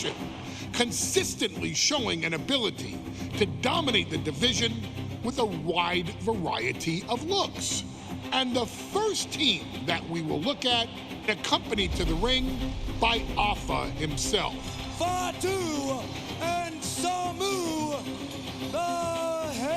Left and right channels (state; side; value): identical; both; correlation 1.00